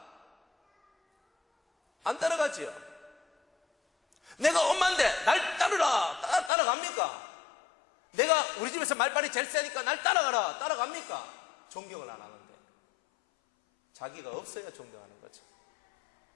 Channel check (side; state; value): right; drops out; at 6.5 s